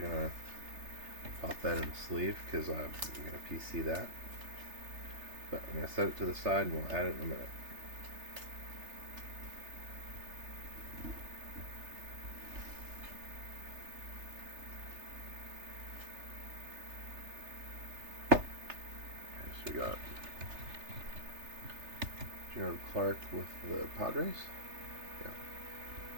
gonna pop that in the sleeve because I'm gonna PC that. But I'm gonna set it to the side and we'll add it in a minute. Gerald Clark with the Padres. Yeah.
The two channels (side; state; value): left; late; 3.3 ms